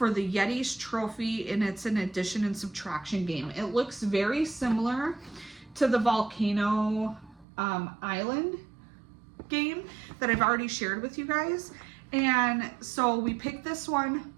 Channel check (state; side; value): drops out; left; at 7.5 s